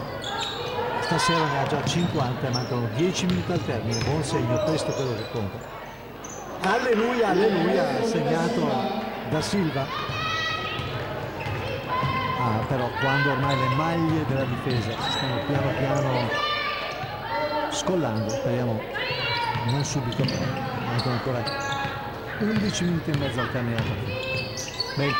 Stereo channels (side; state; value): both; identical; correlation 1.00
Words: Stasera ne ha già 50 e mancano 10 minuti al termine, buon segno, questo è quello che conta. Alleluia, alleluia, segnato da Silva. Però quando ormai le maglie della difesa si stanno piano piano scollando, speriamo non subito, mancano ancora 11 minuti e mezzo al termine della partita.